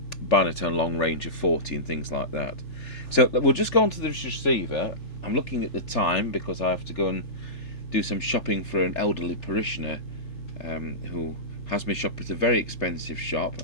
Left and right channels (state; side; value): late; right; 3.7 ms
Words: binatone long range of 40 and things like that. So we'll just go on to this receiver. I'm looking at the time because I have to go and do some shopping for an elderly parishioner who has me shop at a very expensive shop,